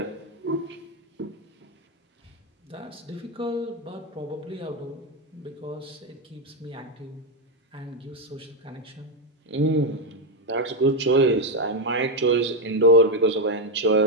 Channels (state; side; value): normal; both; correlation 0.05